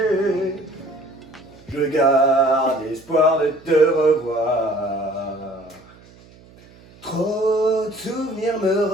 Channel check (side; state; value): right; noise; hum, 25 dB below the sound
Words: Je garde espoir de te revoir. Trop de souvenirs me